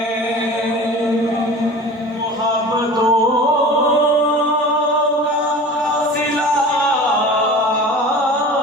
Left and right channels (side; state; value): both; normal; correlation 0.38